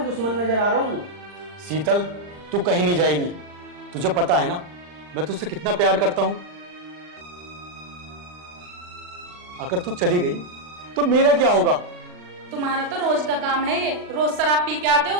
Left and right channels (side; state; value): left; late; 40 ms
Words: दुश्मन नजर आ रहा हूँ। शीतल तू कहीं नहीं जाएगी, तुझे पता है ना मैं तुझसे कितना प्यार करता हूं। अगर तू चली गई तो मेरा क्या होगा? तुम्हारा तो रोज का काम है ये, रोज शराब पी के आते हो,